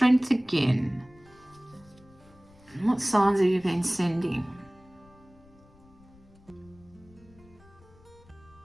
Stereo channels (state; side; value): noise; left; rumble, 26 dB below the sound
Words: again. What signs have you been sending?